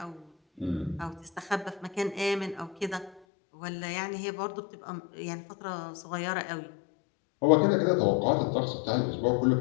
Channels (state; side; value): drops out; right; at 3.2 s